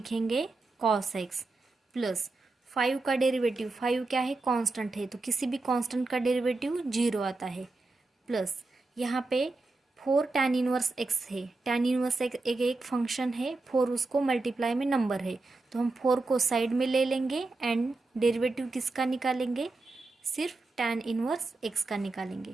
cos x प्लस 5 का डेरिवेटिव, 5 क्या है, कांस्टेंट है तो किसी भी कांस्टेंट का डेरिवेटिव 0 आता है, प्लस यहाँ पे 4 tan इनवर्स x है। tan इनवर्स एक फंक्शन है, 4 उसको मल्टीप्लाई में नंबर है तो हम 4 को साइड में ले लेंगे एंड डेरिवेटिव किसका निकालेंगे, सिर्फ tan इनवर्स x का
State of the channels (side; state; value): left; quieter; 3.4 dB